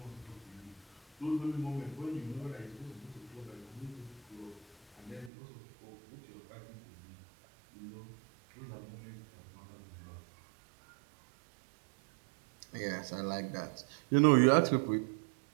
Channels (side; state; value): left; drops out; at 5.3 s